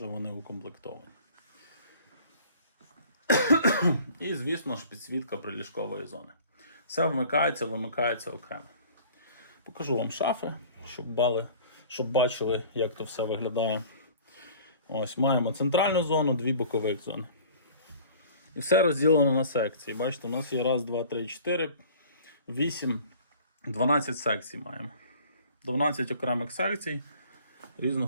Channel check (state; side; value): inverted; both; correlation -0.48